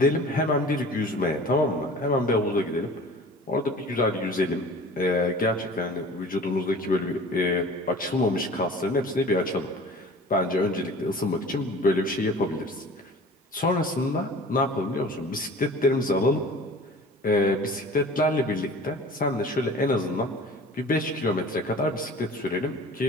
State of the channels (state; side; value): normal; both; correlation 0.43